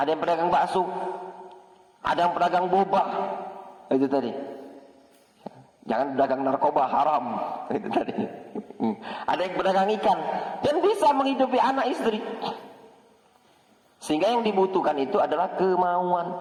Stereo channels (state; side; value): identical; both; correlation 1.00